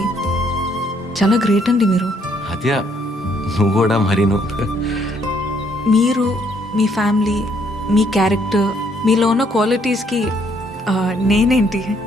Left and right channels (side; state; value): both; normal; correlation 0.68